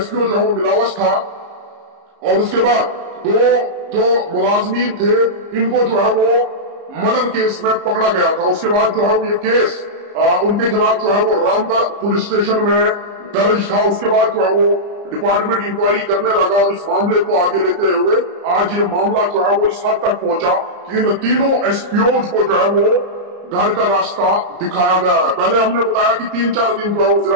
जो है वो मिलावस था। और उसके बाद दो जो मुलाजमीन थे इनको जो है वो मर्डर केस में पकड़ा गया था। उसके बाद जो है वो ये केस उनके खिलाफ जो है वो रामगढ़ पुलिस स्टेशन में दर्ज था। उसके बाद जो है वो डिपार्टमेंट इंक्वायरी करने लगा और इस मामले को आगे लेते हुए आज ये मामला जो है वो इस हद तक पहुंचा कि इन तीनों एसपीओज को जो है वो घर का रास्ता दिखाया गया है। पहले हमने बताया कि 3-4 दिन जो है वो जिला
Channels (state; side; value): late; left; 34 ms